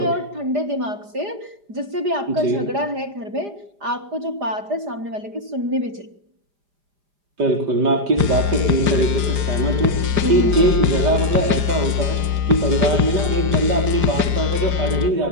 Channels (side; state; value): left; late; 4.9 ms